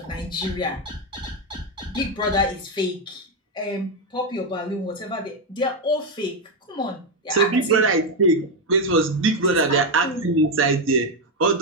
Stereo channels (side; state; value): both; normal; correlation 0.06